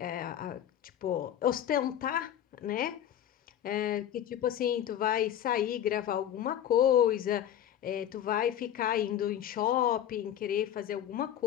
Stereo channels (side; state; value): right; quieter; 10.6 dB